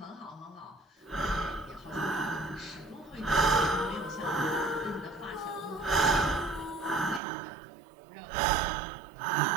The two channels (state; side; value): drops out; left; at 7.2 s